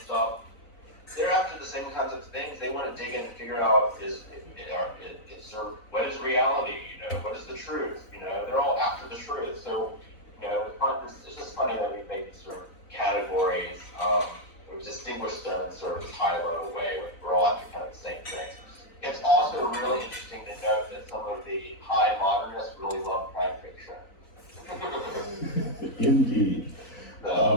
stuff, they're after the same kinds of things. They want to dig in and figure out it's sort of, what is reality? What is the truth? They're all after the truth. So, it's just funny that we make these sort of categories. We distinguish them in sort of this high-level way. We're all after kind of the same things. It's also really interesting to note that some of the high modernists really love crime fiction. Indeed.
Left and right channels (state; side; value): late; right; 4.0 ms